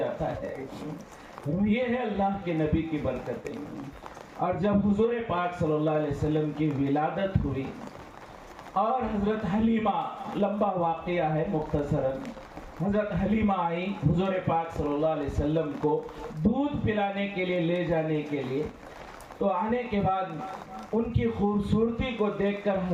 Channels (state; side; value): identical; both; correlation 1.00